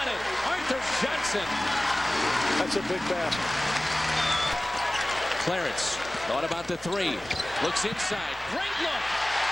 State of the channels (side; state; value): both; normal; correlation 0.98